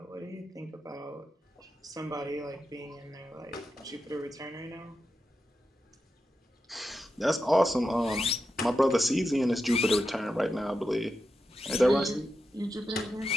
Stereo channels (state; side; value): normal; both; correlation 0.89